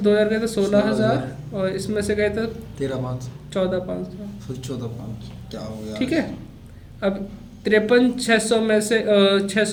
2000 गए तो 16000, और इसमें से गए तो 13500, 14500। 14500 क्या हो गया? ठीक है, अब 53,600 में से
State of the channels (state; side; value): identical; both; correlation 1.00